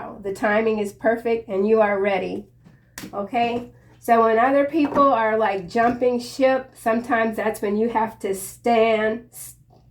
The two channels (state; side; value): identical; both; correlation 1.00